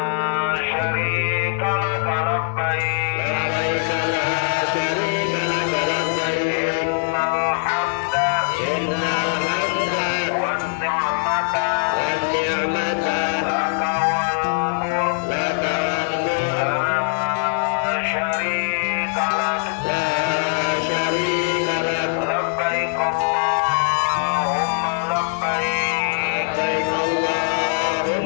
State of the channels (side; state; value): right; silent; digital silence